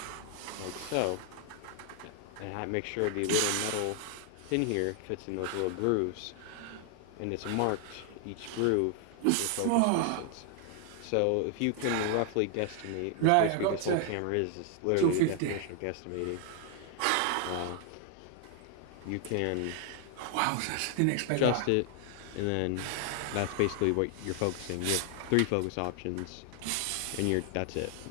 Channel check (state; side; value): different; both; correlation 0.00